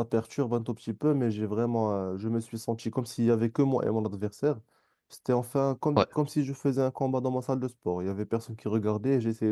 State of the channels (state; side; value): identical; both; correlation 1.00